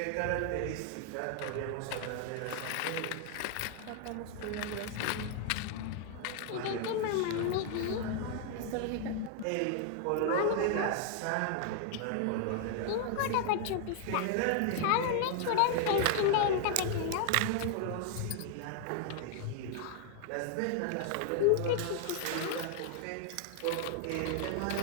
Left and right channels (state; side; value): different; both; correlation 0.00